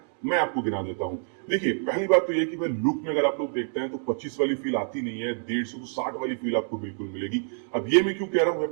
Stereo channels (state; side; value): silent; left; digital silence